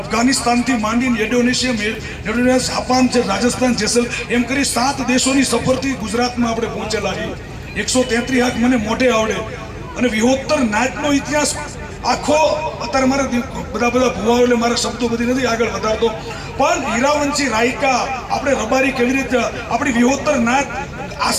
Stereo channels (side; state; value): both; identical; correlation 1.00